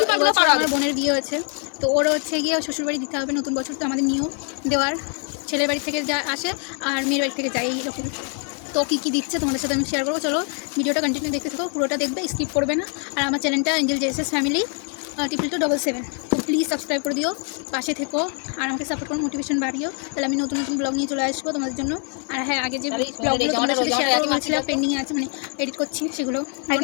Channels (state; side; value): quieter; right; 39.0 dB